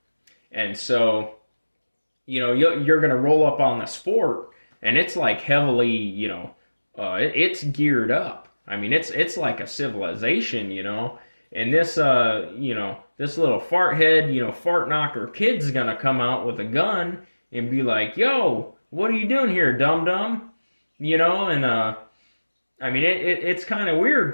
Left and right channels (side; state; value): both; inverted; correlation -1.00